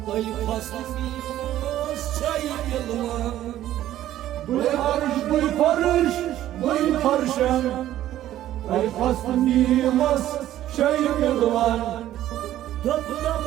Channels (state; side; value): quieter; left; 13.1 dB